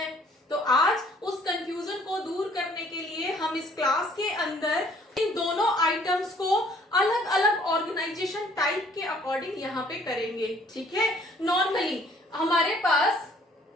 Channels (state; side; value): normal; both; correlation 0.59